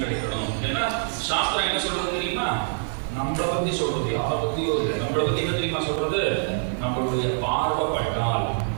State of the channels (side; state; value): left; silent; digital silence